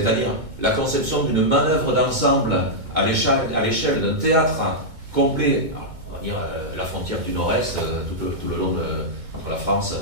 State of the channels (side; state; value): left; late; 2.2 ms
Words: la conception d'une manœuvre d'ensemble à l'échelle d'un théâtre complet, on va dire la frontière du Nord-Est, tout le long entre la France,